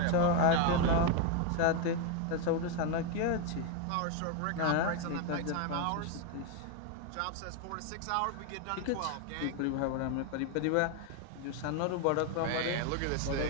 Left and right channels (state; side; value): different; both; correlation 0.01